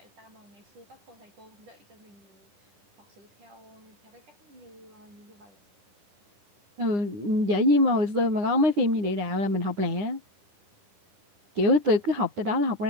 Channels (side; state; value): left; late; 9.8 ms